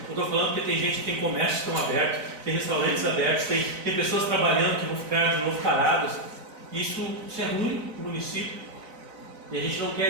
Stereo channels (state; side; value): late; left; 4.0 ms